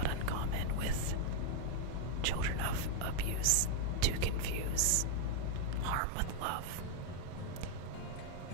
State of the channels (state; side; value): different; both; correlation 0.00